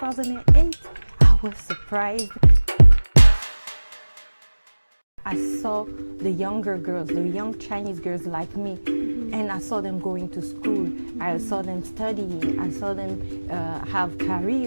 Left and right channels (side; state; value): both; inverted; correlation -1.00